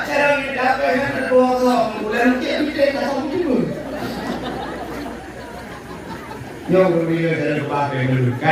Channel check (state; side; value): identical; both; correlation 1.00